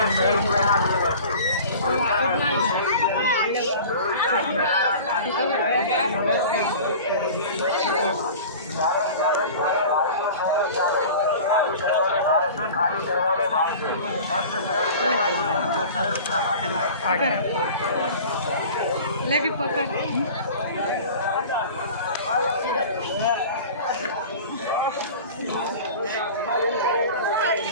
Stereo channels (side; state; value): both; inverted; correlation -0.39